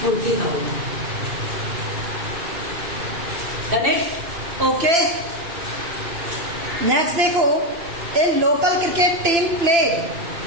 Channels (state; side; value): late; left; 2.9 ms